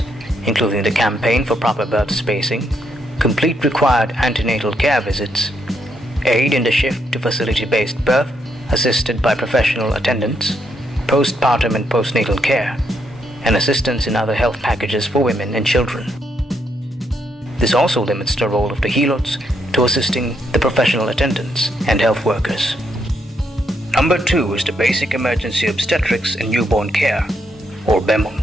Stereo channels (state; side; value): normal; both; correlation 0.77